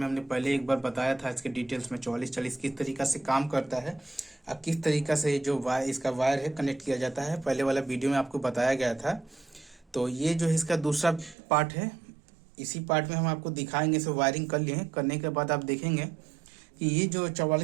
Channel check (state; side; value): drops out; left; at 11.4 s